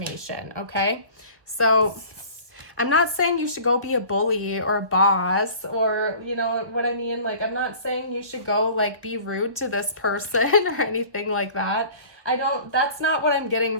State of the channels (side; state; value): left; late; 1.2 ms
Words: Okay, so I'm not saying you should go be a bully or a boss, or you know what I mean? Like, I'm not saying you should go like be rude to this person or anything like that. That's not what I'm getting